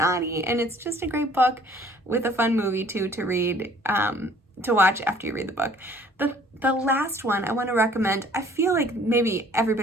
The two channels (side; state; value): both; normal; correlation 0.55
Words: and it's just a great book with a fun movie too to read, to watch after you read the book. The last one I want to recommend, I feel like maybe